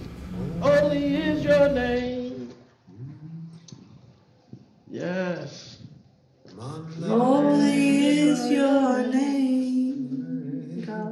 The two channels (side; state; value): both; identical; correlation 1.00